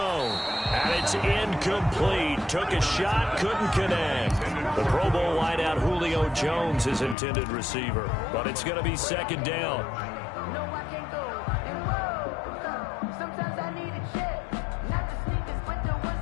And it's incomplete. Took a shot, couldn't connect. The Pro Bowl wideout Julio Jones, his intended receiver. But it's going to be 2nd down.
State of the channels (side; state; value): right; drops out; at 7.2 s